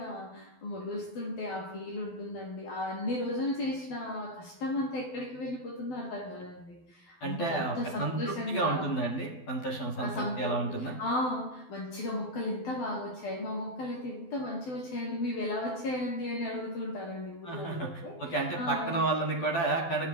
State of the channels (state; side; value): late; right; 12 ms